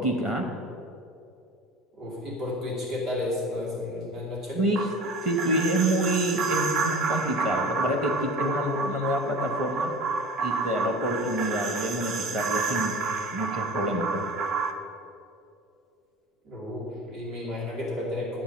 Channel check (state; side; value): normal; both; correlation 0.37